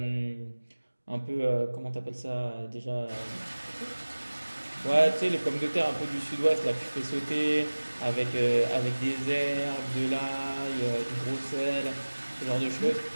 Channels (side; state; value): both; inverted; correlation -1.00